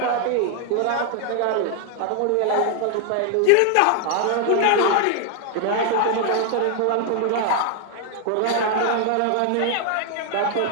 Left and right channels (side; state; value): both; different; correlation 0.00